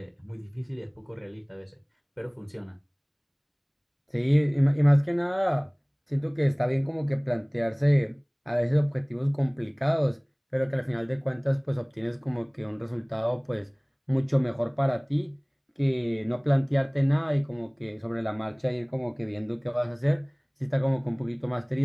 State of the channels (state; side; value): identical; both; correlation 1.00